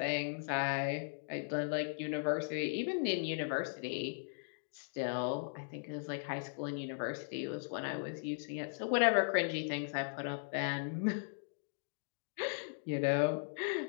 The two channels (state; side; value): silent; right; digital silence